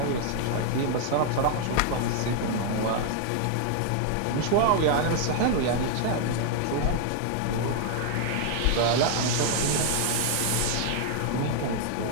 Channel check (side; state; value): both; different; correlation 0.00